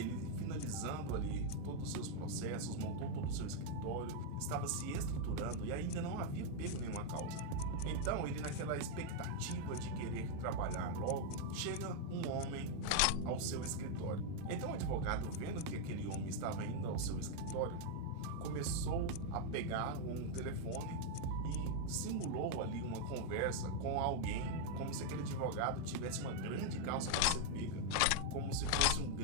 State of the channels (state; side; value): different; both; correlation 0.00